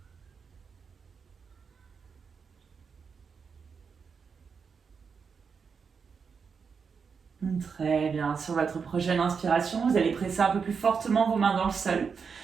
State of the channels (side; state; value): left; quieter; 5.8 dB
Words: Très bien. Sur votre prochaine inspiration, vous allez presser un peu plus fortement vos mains dans le sol